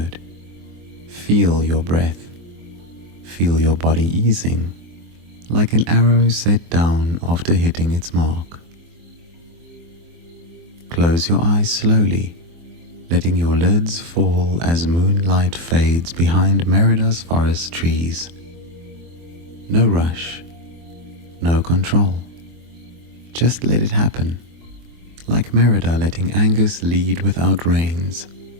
Feel your breath. Feel your body easing, like an arrow set down after hitting its mark. Close your eyes slowly, letting your lids fall as moonlight fades behind Merida's forest trees. No rush, no control. Just let it happen, like Merida letting Angus lead without reins.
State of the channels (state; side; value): late; left; 24 ms